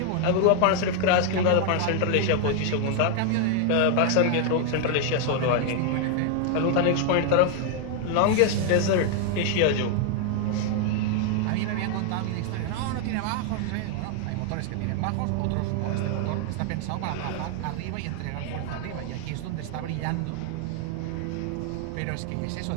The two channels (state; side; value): different; both; correlation 0.00